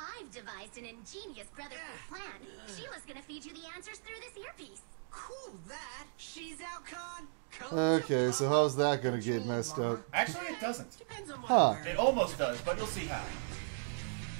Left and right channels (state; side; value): silent; left; digital silence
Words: devised an ingenious brotherhood plan. Sheila's gonna feed you the answers through this earpiece. cool that. Shezow-con. Okay, so how's that gonna get messed up? Actually, it doesn't. Depends on what Huh. I'm wearing. It almost does, but you'll see how.